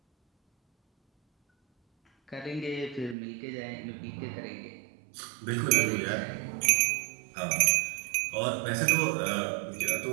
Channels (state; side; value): drops out; left; at 3.2 s